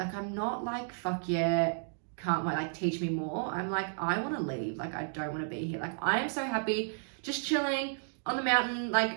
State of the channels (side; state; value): left; silent; digital silence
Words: I'm not like, fuck yeah, can't wait, like, teach me more. I'm like, I want to leave. Like, I don't want to be here. Like, I am so happy just chilling on the mountain,